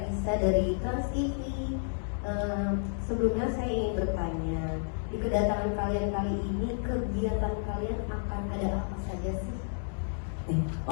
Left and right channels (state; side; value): silent; right; digital silence